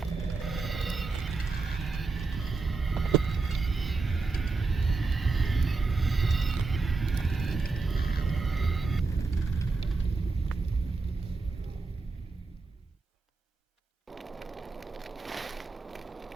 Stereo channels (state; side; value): quieter; left; 4.0 dB